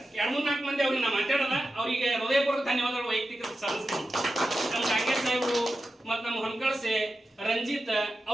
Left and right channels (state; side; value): normal; both; correlation 0.91